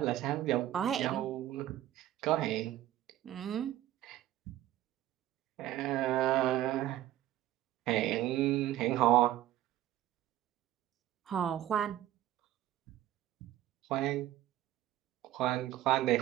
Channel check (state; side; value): quieter; left; 13.8 dB